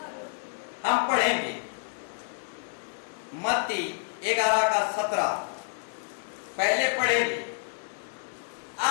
हम पढ़ेंगे मत्ती 11:17 पहले पढ़ेंगे।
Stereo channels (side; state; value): right; silent; digital silence